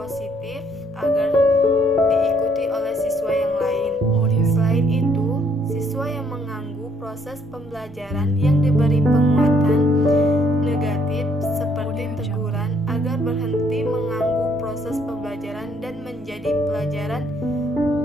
agar diikuti oleh siswa yang lain. Selain itu, siswa yang menganggap proses pembelajaran yang diberi penguatan negatif seperti teguran agar berhenti mengganggu proses pembelajaran dan menjadi pelajaran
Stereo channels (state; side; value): normal; both; correlation 0.67